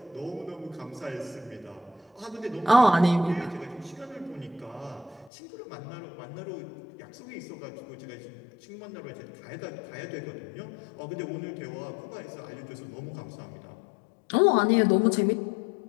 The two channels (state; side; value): drops out; right; at 5.3 s